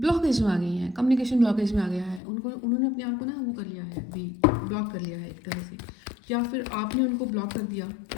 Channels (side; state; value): right; drops out; at 2.2 s